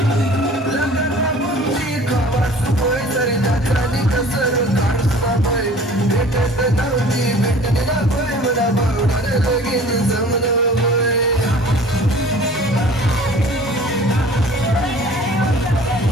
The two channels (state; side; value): normal; both; correlation 0.47